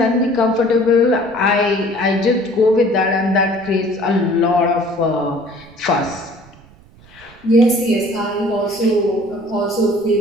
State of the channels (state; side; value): noise; right; rumble, 25 dB below the sound